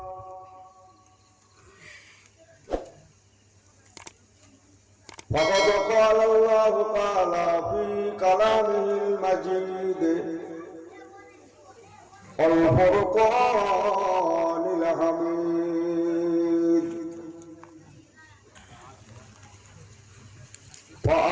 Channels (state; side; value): identical; both; correlation 1.00